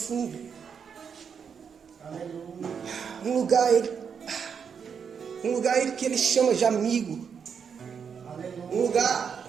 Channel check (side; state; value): left; quieter; 6.8 dB